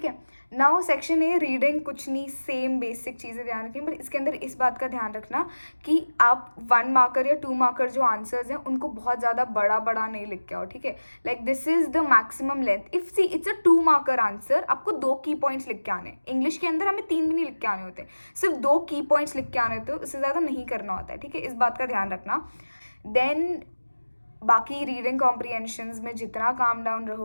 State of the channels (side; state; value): both; inverted; correlation -1.00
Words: है, नाउ सेक्शन ए रीडिंग, कुछ नहीं, सेम बेसिक चीज़ें ध्यान रखें, बट इसके अंदर इस बात का ध्यान रखना कि आप 1 marker या 2 marker जो आंसर्स हैं उनको बहुत ज़्यादा बड़ा बड़ा नहीं लिख के आओ. ठीक है, like this is the maximum length. If see it's a 2 marker answer, आपको 2 की पॉइंट्स लिख के आने. इंग्लिश के अंदर हमें 3 भी नहीं लिख के आने होते, सिर्फ 2 की पॉइंट्स लिख के आने होते, उससे ज़्यादा नहीं करना होता है. ठीक है, इस बात का ध्यान रखना. देन बाकी रीडिंग कॉम्प्रीहेंशंस में जितना काम डाउन